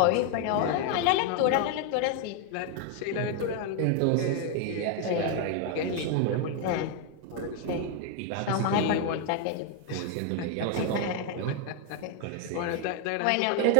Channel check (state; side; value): different; both; correlation 0.01